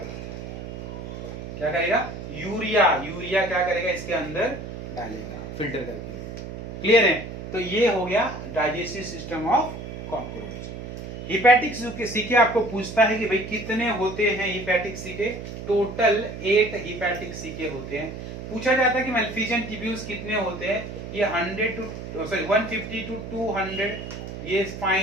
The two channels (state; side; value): noise; right; hum, 9 dB below the sound